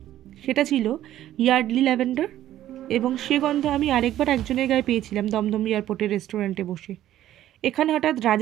সেটা ছিল ইয়ার্ডলি ল্যাভেন্ডার, এবং সে গন্ধ আমি আরেকবার একজনের গায়ে পেয়েছিলাম দমদম এয়ারপোর্টের রেস্টুরেন্টে বসে। এখানে হঠাৎ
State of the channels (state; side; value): quieter; left; 12.8 dB